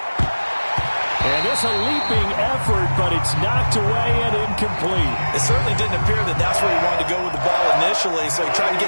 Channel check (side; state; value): both; inverted; correlation -1.00